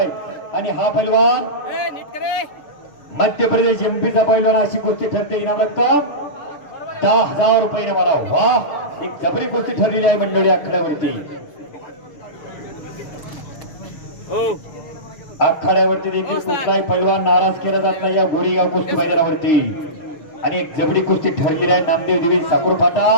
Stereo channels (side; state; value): right; late; 6.4 ms